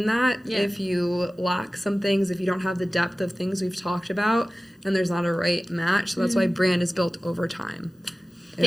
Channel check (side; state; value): both; normal; correlation 0.97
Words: that if you lack some things, if you don't have the depth of things we've talked about, and there's not a right match. So that's why brand is built over time.